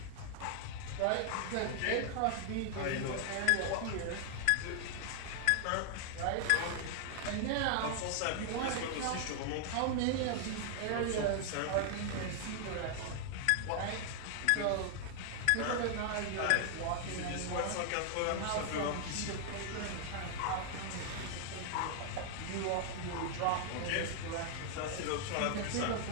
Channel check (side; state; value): both; different; correlation 0.00